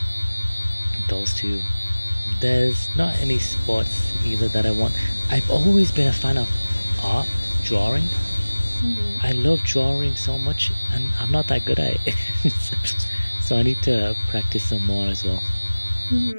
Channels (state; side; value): inverted; both; correlation -1.00